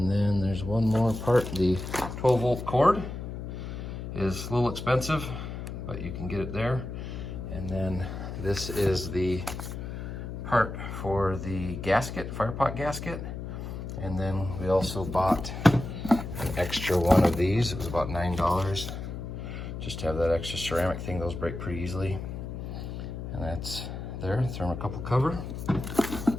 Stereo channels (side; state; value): left; noise; hum, 7 dB below the sound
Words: then there's one more part. The 12-volt cord is a little expensive, but you can get it there. And then this is the part for the gasket, fire pot gasket. And then we also bought an extra one of these. It was about $9 just to have that extra ceramic thing. Those break pretty easily. And that's there, thermocouple cover.